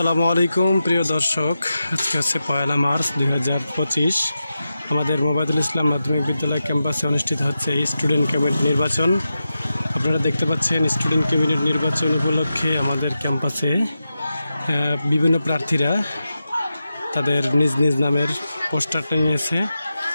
আলাইকুম প্রিয় দর্শক, আজকে হচ্ছে 1 মার্চ 2025। আমাদের মোবাইদুল ইসলাম মাধ্যমিক বিদ্যালয় ক্যাম্পাসে অনুষ্ঠিত হচ্ছে স্টুডেন্ট ক্যাবিনেট নির্বাচন। আপনারা দেখতে পাচ্ছেন স্টুডেন্ট ক্যাবিনেট নির্বাচন উপলক্ষে আমাদের ক্যাম্পাসে বিভিন্ন প্রার্থীরা তাদের নিজ নিজ নামের পোস্টারটা নিয়েছে।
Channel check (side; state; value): both; inverted; correlation -0.90